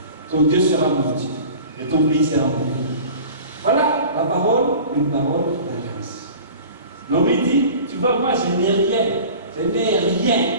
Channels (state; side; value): inverted; both; correlation -0.41